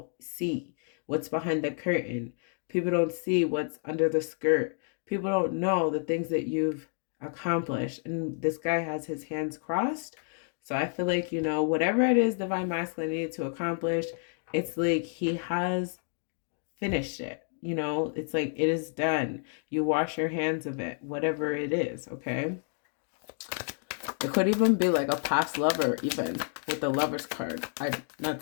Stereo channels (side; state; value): right; silent; 58 dB below the other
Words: see, what's behind the curtain. People don't see what's under the skirt. People don't know the things that you've accomplished. And this guy has his hands crossed. So I feel like, whatever it is Divine Masculine needed to accomplish, it's like he has finished it. It's like it is done. You wash your hands of it, whatever it is, okay? It could even be like a past lover, even with the Lover's card. I'm not